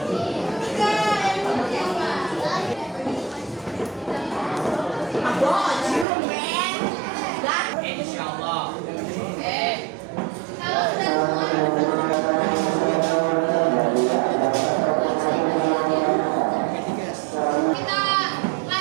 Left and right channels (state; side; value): drops out; left; at 6.1 s